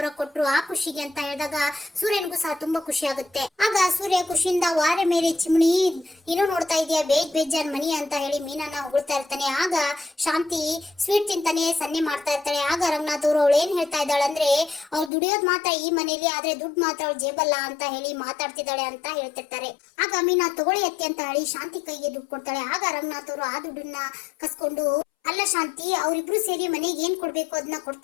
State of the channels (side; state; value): right; drops out; at 15.1 s